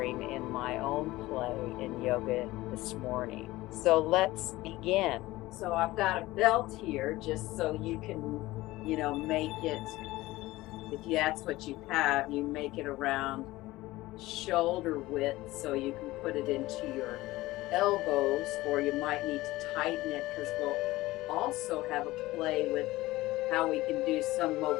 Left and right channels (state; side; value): quieter; right; 18.4 dB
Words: in my own play in yoga this morning. So let's begin. So I've got a belt here just so you can, make it, if that's what you have, you make it around shoulder width so you can put it into your elbows, or you might need to tighten it because we'll also have a play with how we can do some